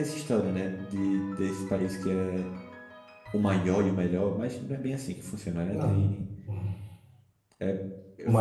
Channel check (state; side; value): identical; both; correlation 1.00